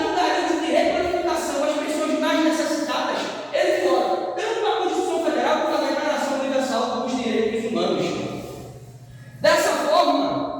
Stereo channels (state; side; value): identical; both; correlation 1.00